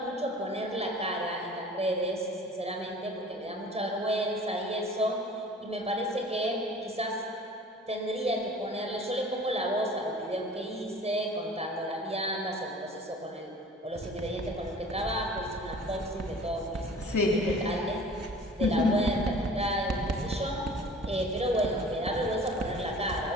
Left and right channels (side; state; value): both; normal; correlation 0.45